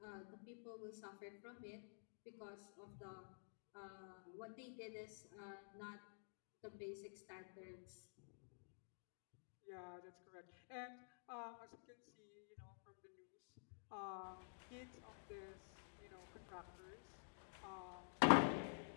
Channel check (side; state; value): right; silent; digital silence